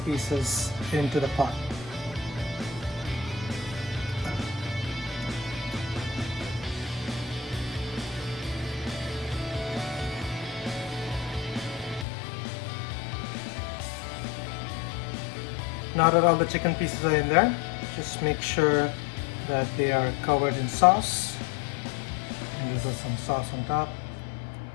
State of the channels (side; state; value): right; drops out; at 12.1 s